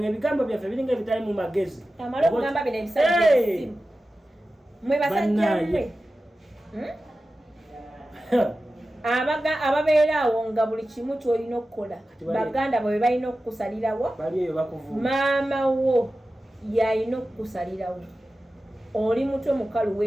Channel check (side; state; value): both; normal; correlation 0.94